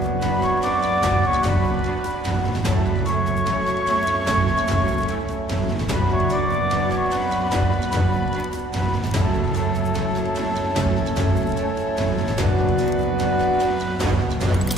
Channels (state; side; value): normal; both; correlation 0.66